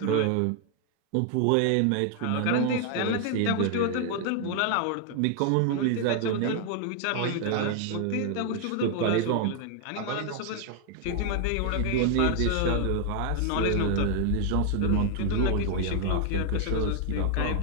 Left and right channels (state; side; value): different; both; correlation 0.00